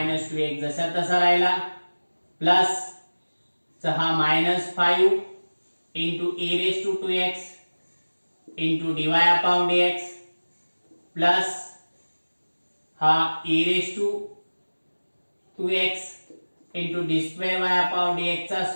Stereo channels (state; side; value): inverted; both; correlation -1.00